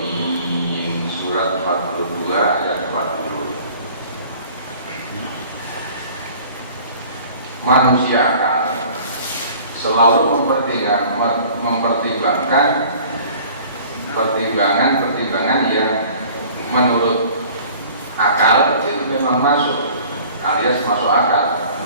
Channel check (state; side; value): inverted; both; correlation -0.48